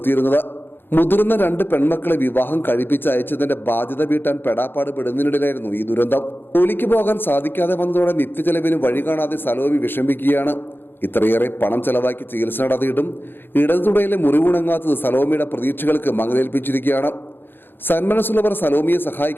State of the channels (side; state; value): right; late; 0.10 ms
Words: മുതിർന്ന 2 പെൺമക്കളെ വിവാഹം കഴിപ്പിച്ച് അയച്ചതിന്റെ ബാധ്യത വീട്ടാൻ പെടാപ്പാട് പെടുന്നതിനിടയിലായിരുന്നു ഈ ദുരന്തം. ജോലിക്ക് പോകാൻ സാധിക്കാതെ വന്നതോടെ നിത്യചെലവിന് വഴി കാണാതെ സലോമി വിഷമിക്കുകയാണ്. ഇത്രയേറെ പണം ചെലവാക്കി ചികിത്സ നടത്തിയിട്ടും ഇടതുതുടയിലെ മുറിവുണങ്ങാത്തത് സലോമിയുടെ പ്രതീക്ഷകൾക്ക് മങ്ങലേൽപ്പിച്ചിരിക്കുകയാണ്. സന്മനസ്സുള്ളവർ സലോമിയെ